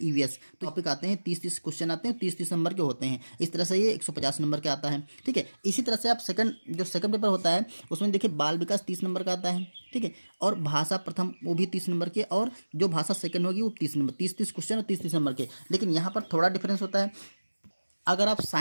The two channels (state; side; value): inverted; both; correlation -1.00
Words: ईवीएस। तो टॉपिक आते हैं 30-30 क्वेश्चन आते हैं, 30-30 नंबर के होते हैं। इस तरह से ये 150 नंबर के आता है। ठीक है, इसी तरह से आप जो सेकंड पेपर होता है उसमें देखिए बाल विकास 30 नंबर का आता है। ठीक है, और भाषा प्रथम वो भी 30 नंबर के, और जो भाषा सेकंड होगी वो 30 नंबर, 30-30 क्वेश्चन और 30-30 नंबर के। लेकिन यहाँ पर थोड़ा डिफरेंस होता है। अगर आप